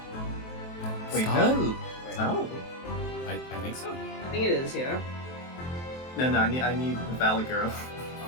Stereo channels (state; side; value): late; right; 23 ms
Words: wait, Scarlet? no. So? I think so. I think it is, yeah. No, I need the Valley Girl.